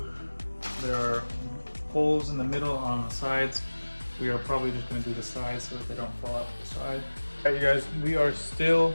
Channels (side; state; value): both; inverted; correlation -1.00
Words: there are holes in the middle on the sides. We are probably just going to do the sides so that they don't fall out the side. Alright, you guys, we are still